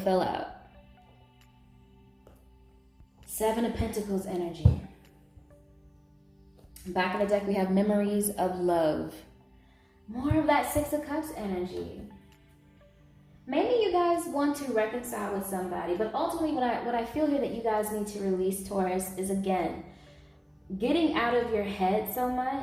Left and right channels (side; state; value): both; identical; correlation 1.00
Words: out. 7 of Pentacles energy. Back of the deck, we have memories of love. More of that 6 of Cups energy. Maybe you guys want to reconcile with somebody, but ultimately what I feel here that you guys need to release, Taurus, is again, getting out of your head so